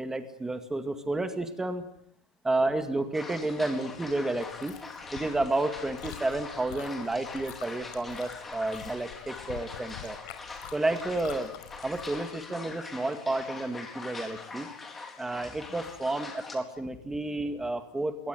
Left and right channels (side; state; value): both; normal; correlation 0.87